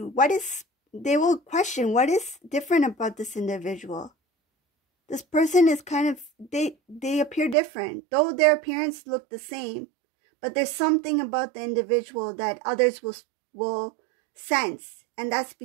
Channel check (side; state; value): left; drops out; at 7.6 s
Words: They will question, what is different about this individual? This person is kind of, they appear different, though their appearance look the same, but there's something about the individual that others will sense, and that's